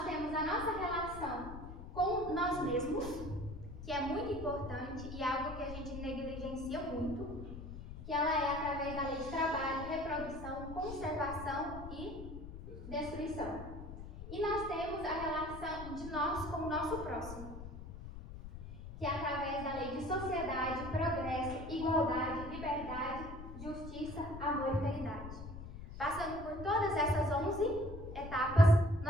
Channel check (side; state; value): left; noise; rumble, 11 dB below the sound